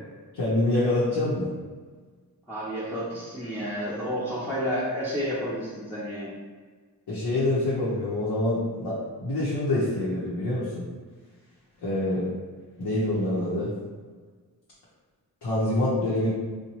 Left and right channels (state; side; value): normal; both; correlation 0.33